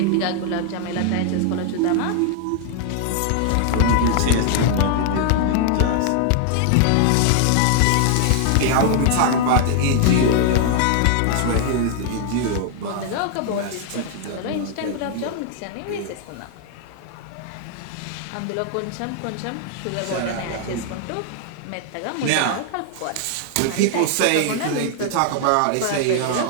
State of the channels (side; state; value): both; different; correlation 0.00